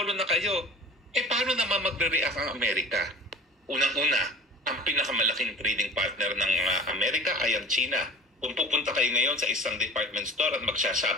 na kayo. Paano naman magre-react ang Amerika? Unang-una, ang pinakamalaking trading partner ng Amerika ay ang China. Kung pupunta kayo ngayon sa isang department store at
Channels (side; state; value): both; normal; correlation 0.38